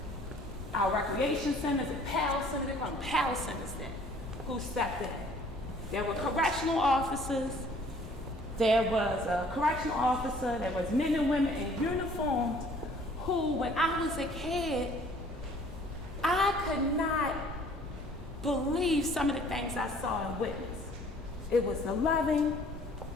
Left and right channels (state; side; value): normal; both; correlation 0.55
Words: our recreation centers, and PAL centers, they call them PAL centers then, who stepped in. There were correctional officers. There was a correctional officer, there was men and women in uniforms who, when I was a kid, I could not believe some of the things I saw and witnessed. It was the loving,